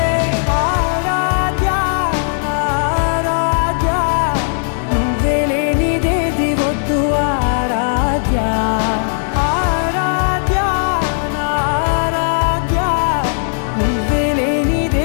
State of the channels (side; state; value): right; silent; digital silence